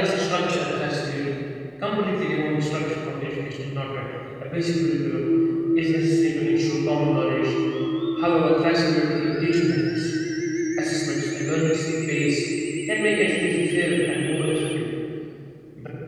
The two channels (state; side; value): identical; both; correlation 1.00